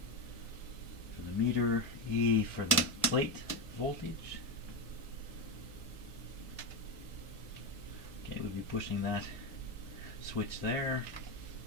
for the meter, E for the plate voltage. Okay, we'll be pushing that switch there.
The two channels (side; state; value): both; normal; correlation 0.12